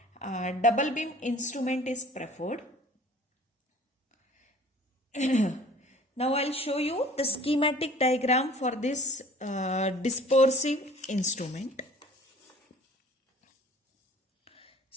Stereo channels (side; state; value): both; normal; correlation 0.50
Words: double beam instrument is preferred. Now I'll show you the schematic diagram for this dispersive instrument.